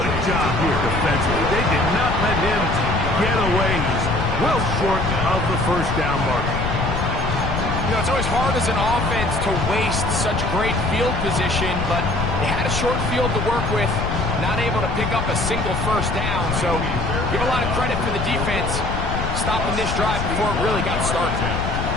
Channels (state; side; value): noise; left; rumble, 2 dB below the sound